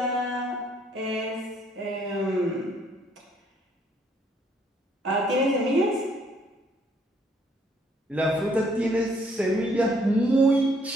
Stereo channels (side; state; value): both; normal; correlation 0.66